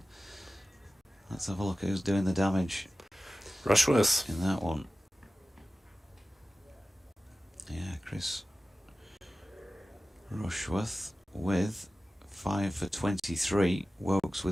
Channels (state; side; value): normal; both; correlation 0.95